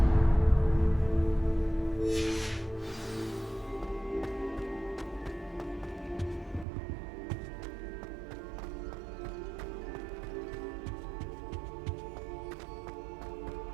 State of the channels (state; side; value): drops out; left; at 6.7 s